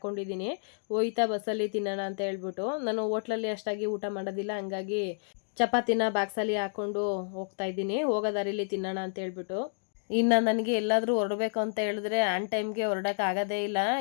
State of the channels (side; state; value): right; silent; digital silence